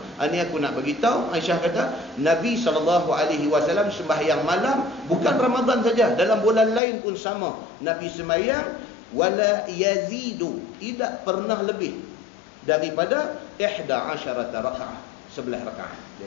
Ini aku nak bagi tahu. Aisyah kata, Nabi SAW sembahyang malam bukan Ramadan saja, dalam bulan lain pun sama. Nabi sembahyang wala yazidu, tidak pernah lebih daripada 11 rakaat, 11 rakaat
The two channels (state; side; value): drops out; right; at 6.8 s